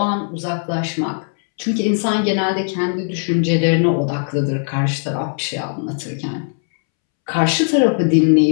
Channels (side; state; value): right; silent; 67 dB below the other